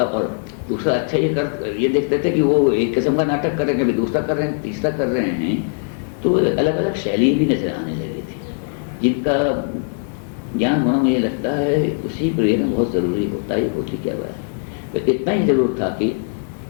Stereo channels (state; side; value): silent; right; 66 dB below the other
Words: और दूसरा अच्छा ये देखते थे कि वो एक किस्म का नाटक कर रहे हैं, कभी दूसरा कर रहे हैं, तीसरा कर रहे हैं, तो अलग अलग शैली भी नजर आने लगी थी जिनका ज्ञान होना मुझे लगता है उसी प्रिय में बहुत ज़रूरी होता है। होती क्या हुआ है तो इतना ही ज़रूर था कि